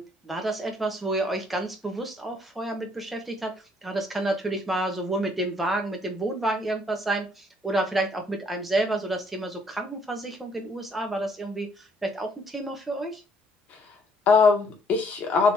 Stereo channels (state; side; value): normal; both; correlation 0.65